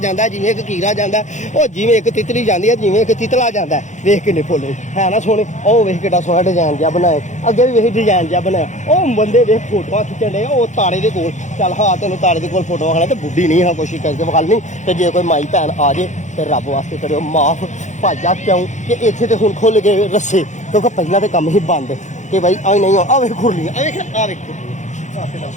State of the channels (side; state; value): right; late; 0.35 ms